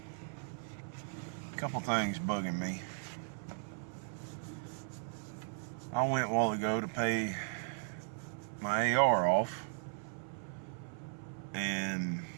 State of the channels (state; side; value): silent; left; 53 dB below the other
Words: a couple things bugging me. I went a while ago to pay my AR off, and